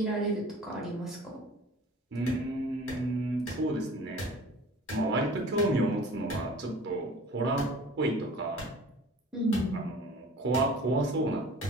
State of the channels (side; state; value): both; normal; correlation 0.44